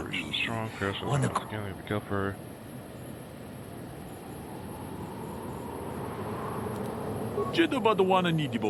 Wana Go for Jeda badawana ni di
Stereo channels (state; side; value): identical; both; correlation 1.00